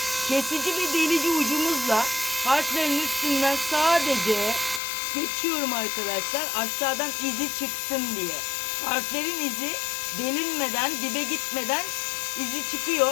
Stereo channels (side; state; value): right; drops out; at 4.8 s